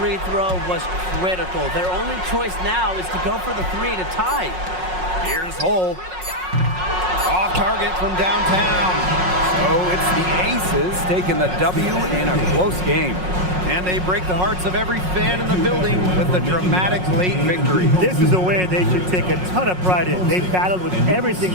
throw was critical. Their only choice now is to go for the 3 to tie. Here's Hull. Off target from downtown. So it's the Aces taking the W in a close game. And they break the hearts of every fan in the building with a dramatic late victory. This is a win they should take a ton of pride in. They battled with everything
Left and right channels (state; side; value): late; left; 5.5 ms